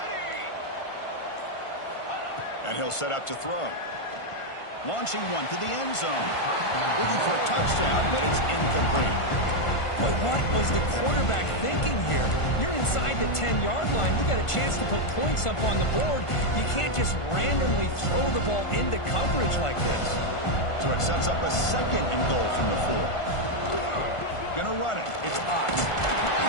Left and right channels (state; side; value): late; right; 1.5 ms